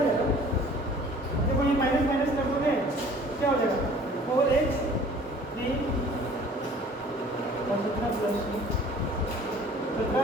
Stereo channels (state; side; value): normal; both; correlation 0.50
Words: देखो ये माइनस माइनस कर दोगे क्या हो जाएगा 4x 3 और 17 प्लस 17